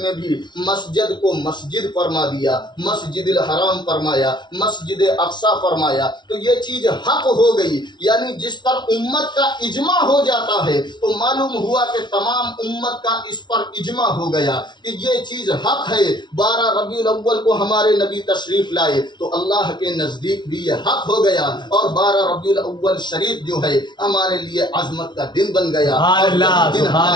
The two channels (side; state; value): right; late; 0.21 ms